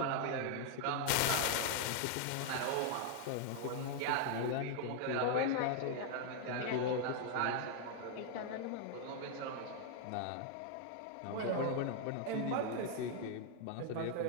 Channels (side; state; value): both; different; correlation 0.00